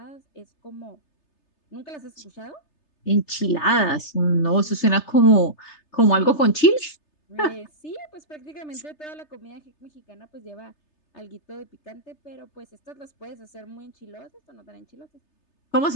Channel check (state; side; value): late; right; 3.3 ms